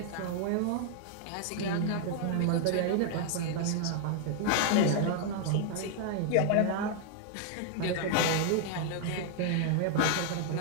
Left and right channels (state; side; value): different; both; correlation 0.00